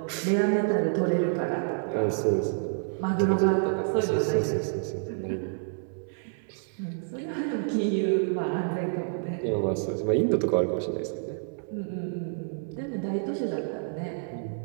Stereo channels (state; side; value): silent; left; 59 dB below the other